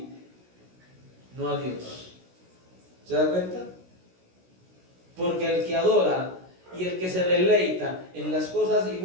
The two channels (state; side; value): late; left; 16 ms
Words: no a Dios. ¿Se da cuenta? Porque el que adora y el que se deleita en las cosas y